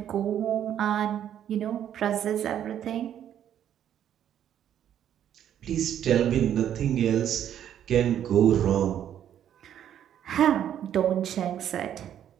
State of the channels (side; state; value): left; quieter; 10.2 dB